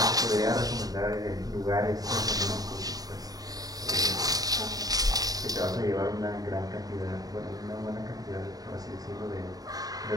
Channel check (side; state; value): left; late; 0.18 ms